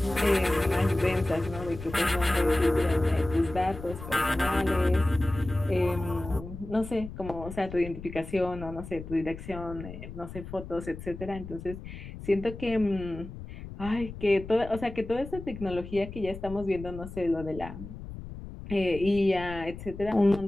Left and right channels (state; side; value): noise; left; rumble, 12 dB below the sound